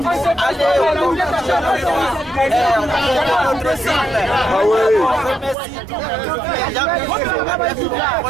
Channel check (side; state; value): left; drops out; at 5.6 s